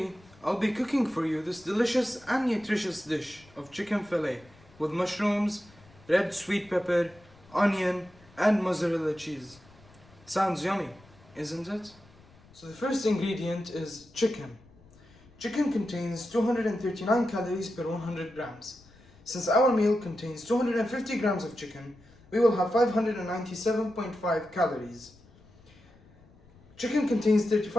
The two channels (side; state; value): left; noise; rumble, 26 dB below the sound